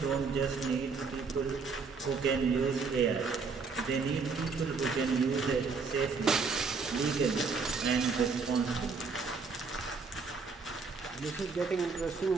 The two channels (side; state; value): left; quieter; 4.8 dB